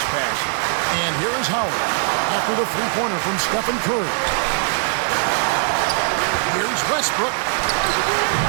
passion. And here is Howard after the three-pointer from Stephen Curry. Here's Westbrook.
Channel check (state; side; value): silent; left; digital silence